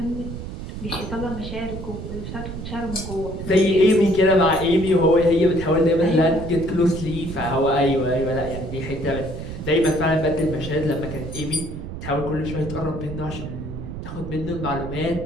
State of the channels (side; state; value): right; noise; rumble, 8 dB below the sound